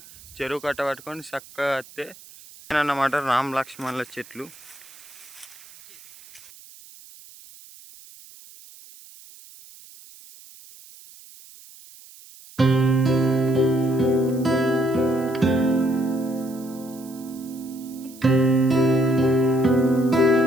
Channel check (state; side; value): noise; right; hiss, 21 dB below the sound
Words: చెరువు కట్ట పట్టుకొని చక్కగా వస్తే అన్నమాట రామ లక్ష్మణుల చెట్లు.